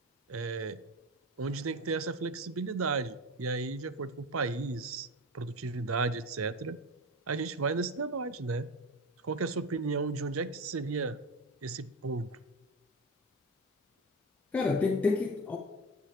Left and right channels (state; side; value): normal; both; correlation 0.24